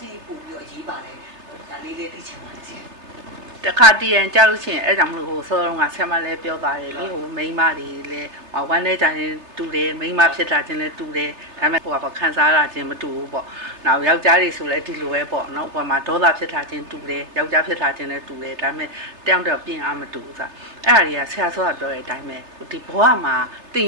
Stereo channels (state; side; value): late; left; 3.3 ms